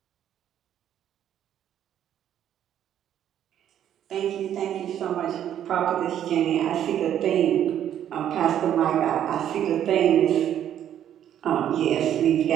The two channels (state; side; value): quieter; left; 10.4 dB